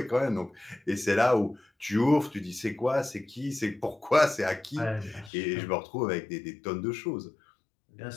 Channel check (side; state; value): right; drops out; at 5.3 s